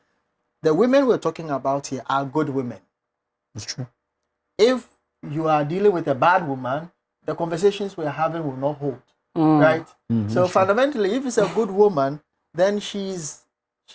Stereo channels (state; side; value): identical; both; correlation 1.00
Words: the women we're talking about here are good women. It's true. If you are dealing with a bad woman, the conversations we're having will not hold, right? So fundamentally, if it's a good woman, then she's